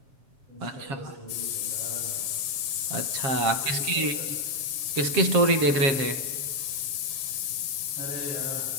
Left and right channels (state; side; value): late; left; 7.4 ms